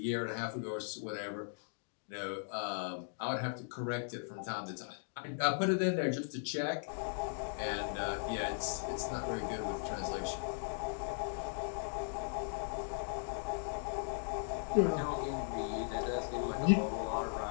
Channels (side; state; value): right; silent; digital silence